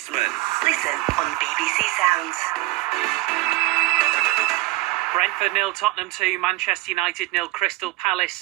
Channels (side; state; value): left; quieter; 20.0 dB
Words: Listen on BBC Sounds. Brentford 0, Tottenham 2, Manchester United 0, Crystal